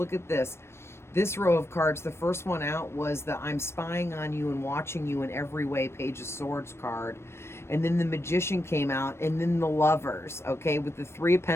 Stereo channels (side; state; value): right; late; 0.12 ms